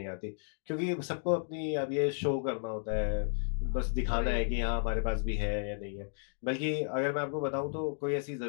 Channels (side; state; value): right; silent; digital silence